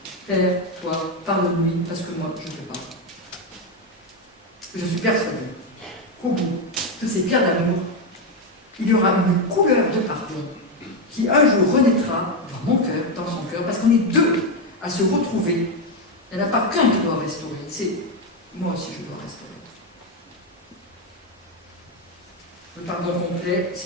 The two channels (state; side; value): normal; both; correlation 0.07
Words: Père, toi, pardonne-lui, parce que moi, je ne peux pas. Je suis persuadée qu'au bout de ces pierres d'amour, il y aura une couleur de pardon qui un jour renaîtra dans mon cœur, dans son cœur, parce qu'on est deux à se retrouver. Il n'y en a pas qu'un qui doit restaurer, c'est moi aussi je dois restaurer. Le pardon complet,